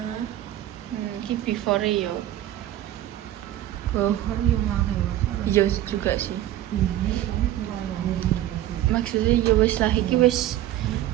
ini before yo kan yang lagi iya juga sih maksudnya ya wis lah iki wis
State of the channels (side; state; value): left; quieter; 13.3 dB